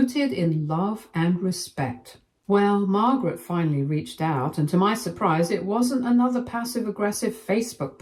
in love and respect. Well, Margaret finally reached out, and to my surprise, it wasn't another passive-aggressive Facebook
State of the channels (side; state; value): both; identical; correlation 1.00